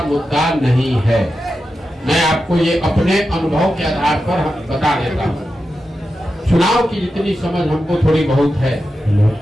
मुद्दा नहीं है। मैं आपको ये अपने अनुभव के आधार पर बता देता हूँ। चुनाव की जितनी समझ हमको थोड़ी बहुत है,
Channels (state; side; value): normal; both; correlation 0.90